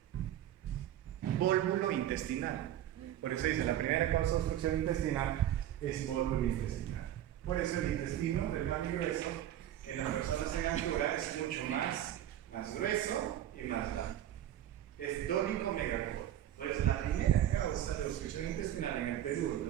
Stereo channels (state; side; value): quieter; left; 11.8 dB